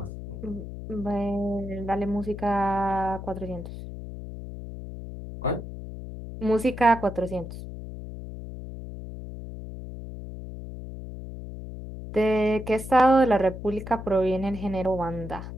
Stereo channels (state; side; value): noise; left; hum, 10 dB below the sound